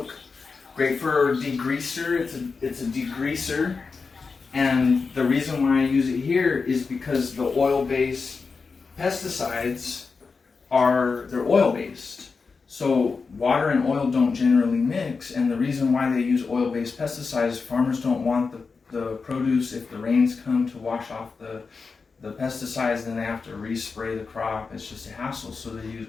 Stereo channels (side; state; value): right; quieter; 4.7 dB